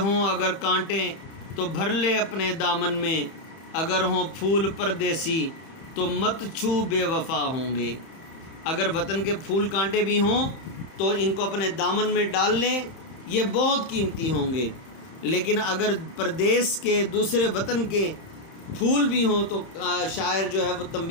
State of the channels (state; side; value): late; right; 31 ms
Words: اگر کانٹے تو بھر لے اپنے دامن میں، اگر ہوں پھول پردیسی تو مت چھو بے وفا ہوں گے۔ اگر وطن کے پھول کانٹے بھی ہوں تو ان کو اپنے دامن میں ڈال لیں، یہ بہت قیمتی ہوں گے، لیکن اگر پردیس کے دوسرے وطن کے پھول بھی ہوں تو شاعر جو ہے وہ